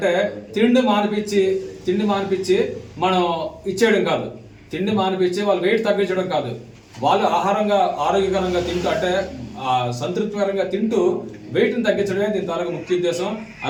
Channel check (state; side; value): identical; both; correlation 1.00